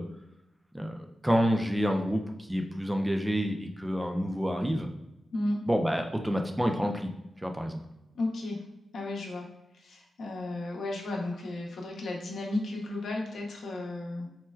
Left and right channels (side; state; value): both; normal; correlation 0.94